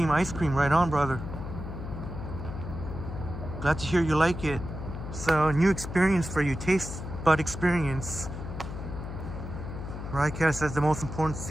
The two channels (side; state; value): left; noise; hum, 8 dB below the sound